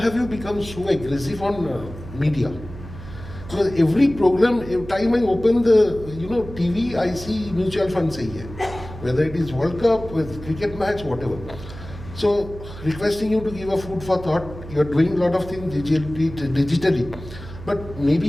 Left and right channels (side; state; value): right; noise; hum, 13 dB below the sound